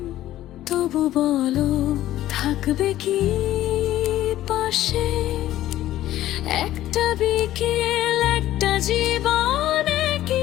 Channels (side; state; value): right; quieter; 13.9 dB